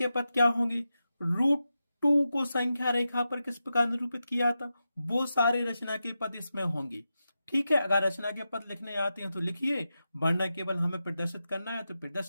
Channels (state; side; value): inverted; both; correlation -0.90